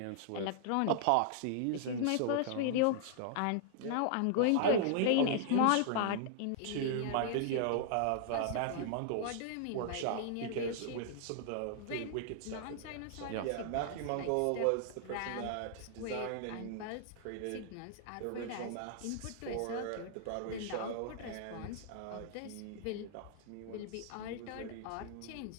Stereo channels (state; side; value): different; both; correlation -0.01